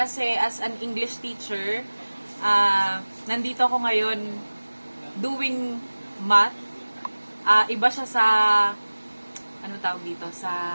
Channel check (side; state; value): both; inverted; correlation -1.00